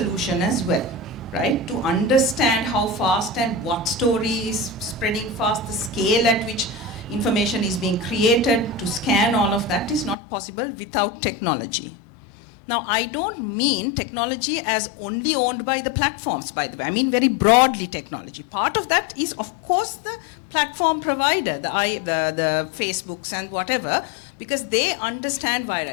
as well, right? To understand how fast and what story is spreading fast, the scale at which information is being created, to scan all of that is not possible without technology. Now, I don't mean technology as only owned by the platforms, by the way. I mean very broadly technology. Part of that is, of course, the platform provider, the Facebooks and whatever, because they understand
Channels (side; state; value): right; drops out; at 10.2 s